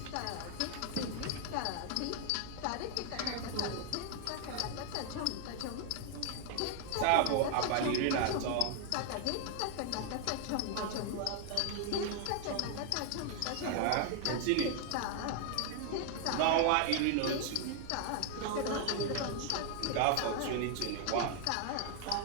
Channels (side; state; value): both; different; correlation 0.00